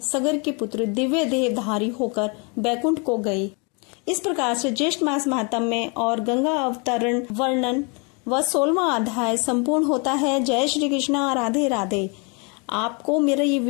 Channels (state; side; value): quieter; right; 33.2 dB